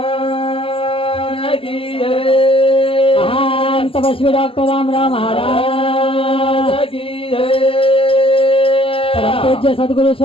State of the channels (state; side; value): late; right; 0.26 ms